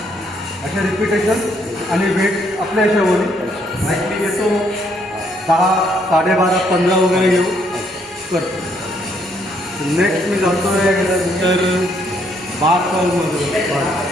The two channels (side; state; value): both; normal; correlation 0.70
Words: असे रिपिटेशन आणि वेट आपल्या ह्याच्यावर लाईक मी घेतो 10, 12.5, 15 वगैरे घेऊन करतो. नेक्स्ट मी जातो तर बार कर्लमध्ये.